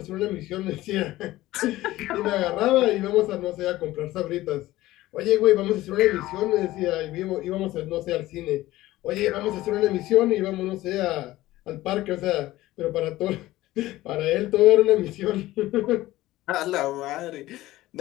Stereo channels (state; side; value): quieter; right; 16.7 dB